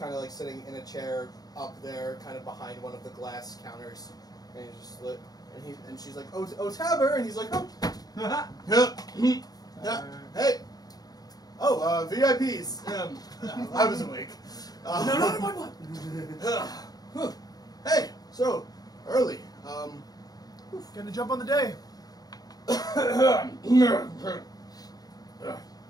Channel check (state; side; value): late; right; 0.19 ms